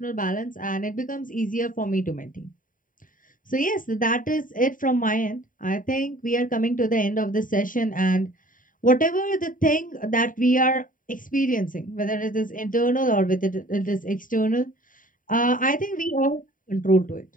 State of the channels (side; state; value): right; late; 0.39 ms